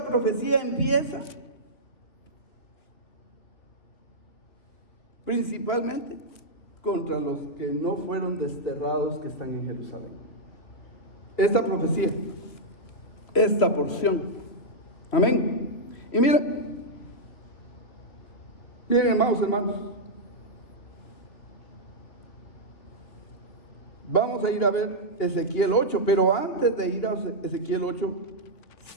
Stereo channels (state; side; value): late; right; 2.9 ms